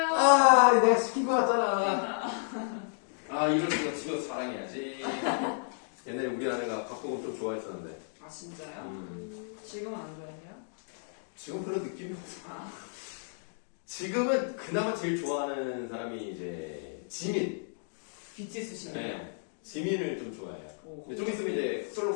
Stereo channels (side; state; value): right; silent; digital silence